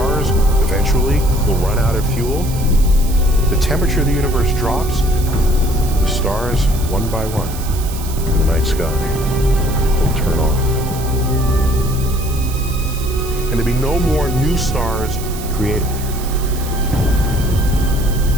eventually will run out of fuel. The temperature of the universe drops. The stars, one by one, in the night sky, will turn off. And there'll be no more new stars created.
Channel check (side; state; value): right; noise; hiss, 13 dB below the sound